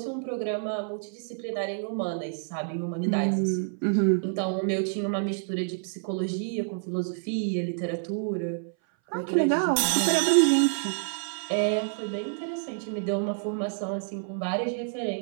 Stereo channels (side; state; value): left; silent; 59 dB below the other